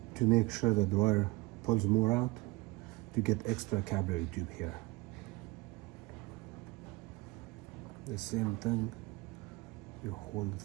to make sure the wire pulls more out, to get extra capillary tube here. The same thing, you hold it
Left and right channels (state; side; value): quieter; left; 22.2 dB